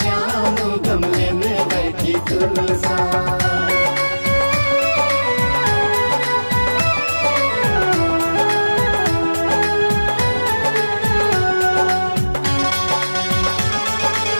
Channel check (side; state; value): both; inverted; correlation -1.00